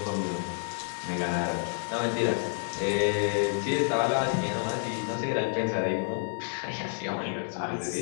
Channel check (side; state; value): right; silent; digital silence